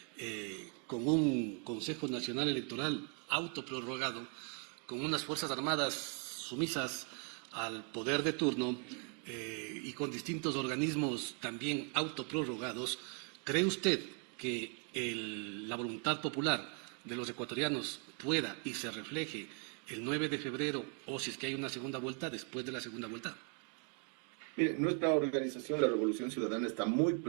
con un Consejo Nacional Electoral autoprorrogado, con unas Fuerzas Armadas sumisas al poder de turno y con distintos organismos también autoprorrogados, ¿cree usted que la voluntad popular de los ecuatorianos pueda y se refleje el 9 de febrero, o si es que hay una segunda vuelta, después de la segunda vuelta? Mire, nuestra organización, la Revolución Ciudadana, está muy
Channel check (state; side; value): quieter; left; 37.5 dB